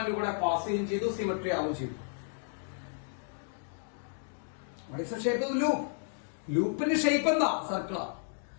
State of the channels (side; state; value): right; silent; digital silence